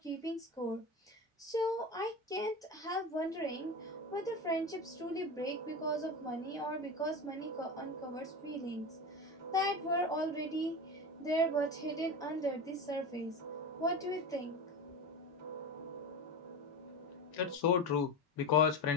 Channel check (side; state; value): both; normal; correlation 0.24